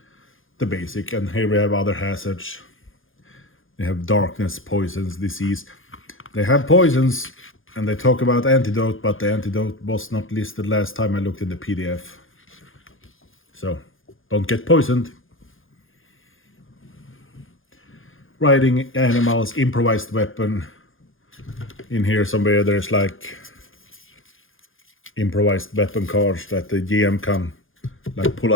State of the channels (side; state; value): right; late; 0.59 ms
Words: the basic. And here we have other hazards. They have darkness, poisons, disease. They have poisons And they talk about antidote, but the antidote was not listed last time I looked in the PDF. So, don't get poisoned. Riding animals, improvised weapon. In here somewhere there's like improvised weapon cards that the GM can like pull